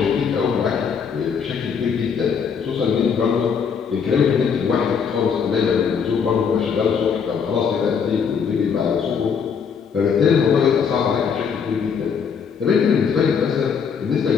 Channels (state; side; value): quieter; right; 6.6 dB